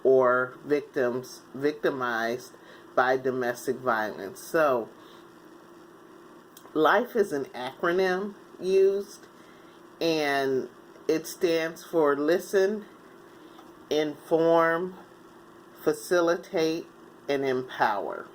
or victims victimized by domestic violence. So LIFE is an acronym used, and it stands for listen, inform, facilitate, and empower.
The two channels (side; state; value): both; identical; correlation 1.00